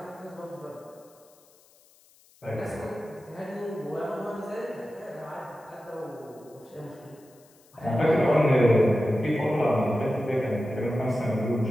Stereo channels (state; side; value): noise; left; hiss, 29 dB below the sound